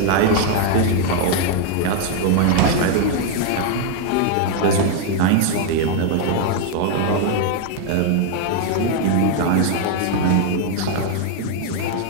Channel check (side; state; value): both; different; correlation 0.00